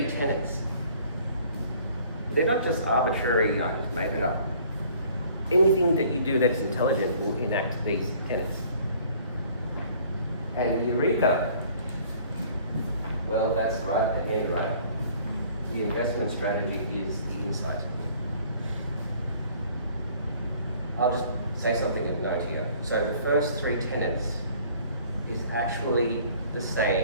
tenets. They're not just arbitrary, I just made it up. Anything that you do that's intelligent will enact these tenets. And Eureka, well, that's right at the end, right? The investment strategy is the insight. I'll just say something of note here. So the first three tenets is actually the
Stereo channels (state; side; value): inverted; both; correlation -0.55